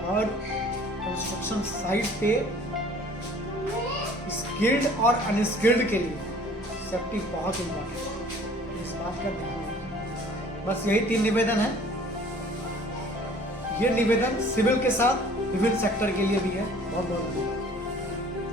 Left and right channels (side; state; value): both; normal; correlation 0.51